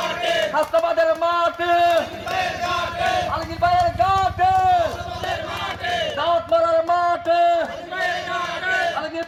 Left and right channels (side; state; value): both; identical; correlation 1.00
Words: হাসনাবাদের মাঠে আলগীর ভাইয়ের ঘাটে দাওয়াত মারার মাঠে আলগীর